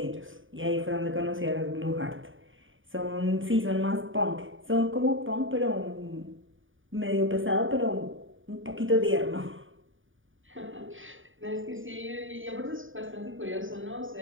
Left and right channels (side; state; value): left; late; 0.57 ms